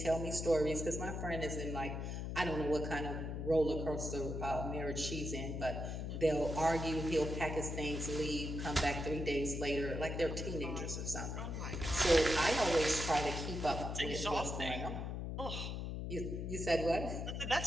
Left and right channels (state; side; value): noise; left; hum, 4 dB below the sound